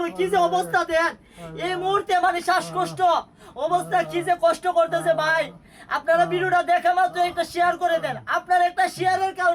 কি যে অবস্থা দেন এই মুহূর্তে, মানে শ্বাসকষ্ট অবস্থা, কি যে কষ্ট করতেছে ভাই। আপনারা ভিডিওটা দেখা মাত্র একটা শেয়ার করে দেন। আপনার একটা শেয়ারের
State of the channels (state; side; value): identical; both; correlation 1.00